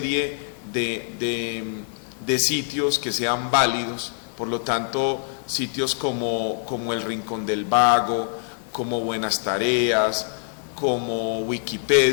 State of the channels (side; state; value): right; silent; digital silence